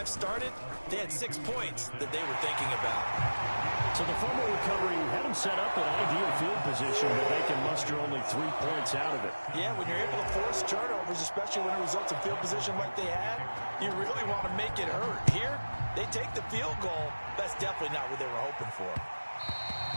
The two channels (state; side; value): inverted; both; correlation -1.00